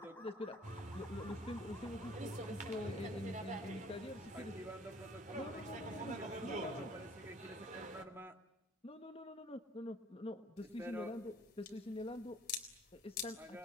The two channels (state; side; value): normal; both; correlation 0.55